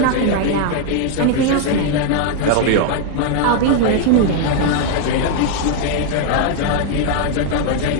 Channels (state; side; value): different; both; correlation 0.00